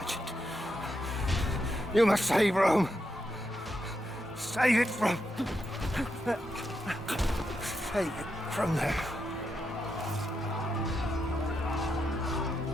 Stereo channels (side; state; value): both; normal; correlation 0.84